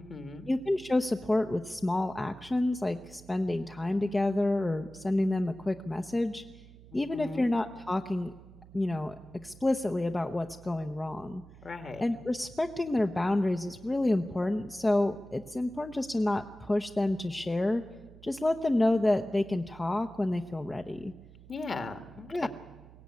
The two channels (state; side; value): noise; right; hum, 21 dB below the sound